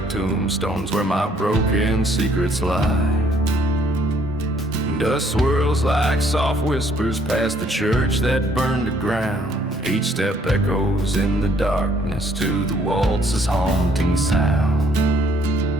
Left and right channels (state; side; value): normal; both; correlation 0.64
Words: tombstones where my broken secrets lie. Dust swirls like soft whispers past the church that burned to ground. Each step echoes in the darkness to the waltz's haunting sound.